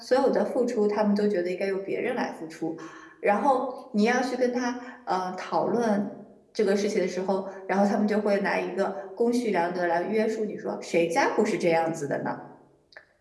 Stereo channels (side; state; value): both; identical; correlation 1.00